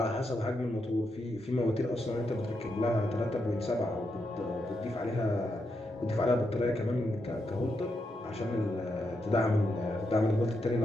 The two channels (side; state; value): both; normal; correlation 0.83